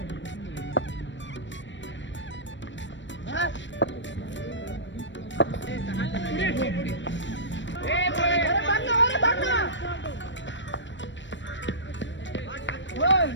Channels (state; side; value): late; right; 0.53 ms